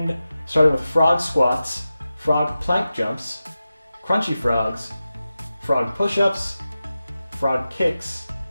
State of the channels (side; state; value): both; inverted; correlation -0.93